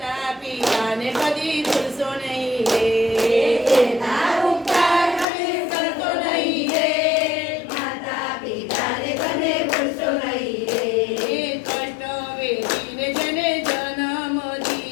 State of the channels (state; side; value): drops out; right; at 5.2 s